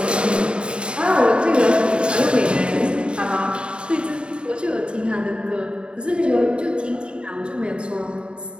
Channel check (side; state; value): left; late; 0.053 ms